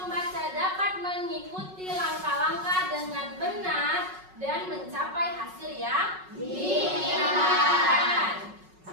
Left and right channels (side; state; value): left; late; 5.4 ms